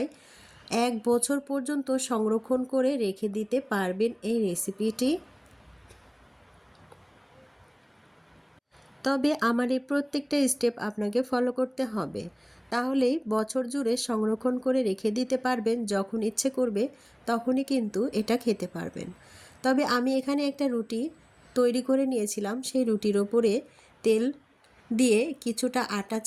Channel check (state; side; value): identical; both; correlation 1.00